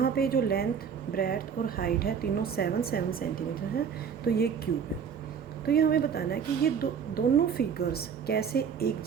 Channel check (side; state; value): left; quieter; 7.1 dB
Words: पे जो लेंथ, ब्रेड्थ और हाइट है तीनों 7 सेंटीमीटर है, तो ये क्यूब है। तो ये हमें बताना है कि ये दोनों फिगर्स कैसे एक